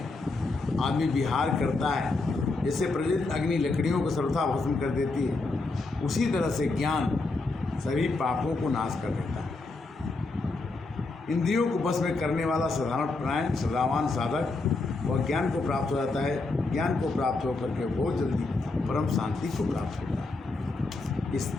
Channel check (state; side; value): quieter; right; 3.5 dB